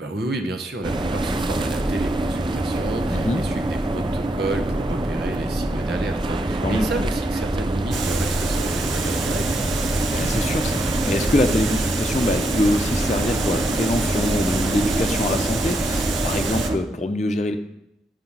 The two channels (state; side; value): normal; both; correlation 0.79